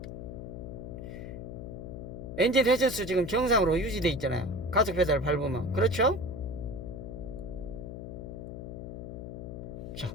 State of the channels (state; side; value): noise; left; hum, 8 dB below the sound